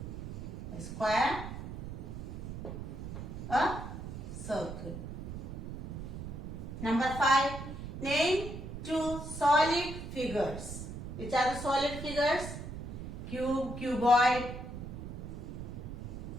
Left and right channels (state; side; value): noise; right; rumble, 8 dB below the sound